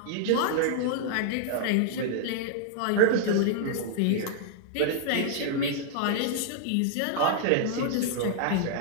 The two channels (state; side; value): different; both; correlation -0.01